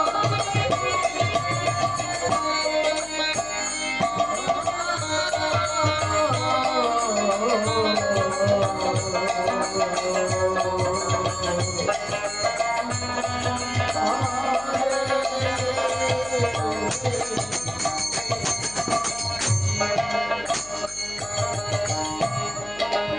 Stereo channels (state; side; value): noise; left; hum, 19 dB below the sound